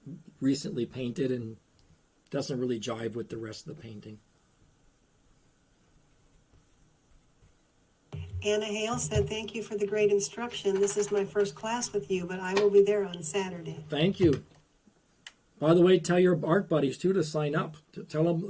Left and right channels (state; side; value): identical; both; correlation 1.00